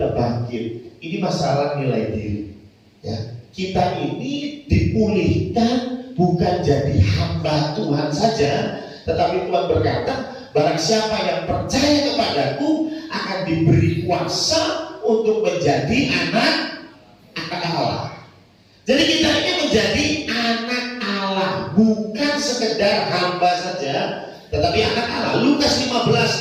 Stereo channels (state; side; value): identical; both; correlation 1.00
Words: bangkit? Ini masalah nilai diri. Ya, kita ini dipulihkan bukan jadi hamba Tuhan saja, tetapi Tuhan berkata, barang siapa yang percaya kepadaku akan diberi kuasa untuk menjadi anak Allah. Jadi kita ini menjadi anak Allah, bukan sekedar hamba saja, tetapi anak Allah. Lukas